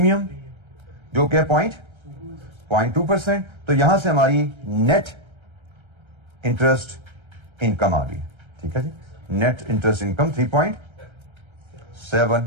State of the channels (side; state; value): left; late; 1.3 ms